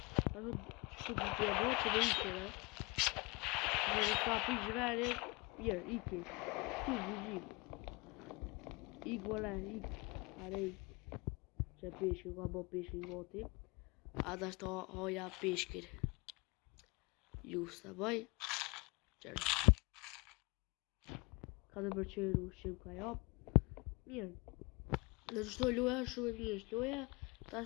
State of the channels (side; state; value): right; quieter; 27.3 dB